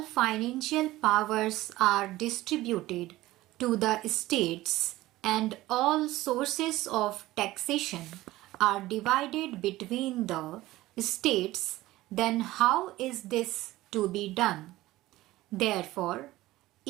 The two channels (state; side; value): quieter; left; 17.1 dB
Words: financial powers are distributed to the states and all sources of taxation are divided between the states, then how is this to be done? Therefore,